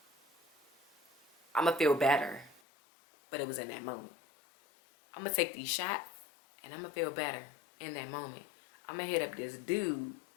I'm gonna feel better. But it was in that moment. I'm gonna take these shots and I'm gonna feel better in that moment. I'm gonna hit up this dude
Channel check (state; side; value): drops out; right; at 2.6 s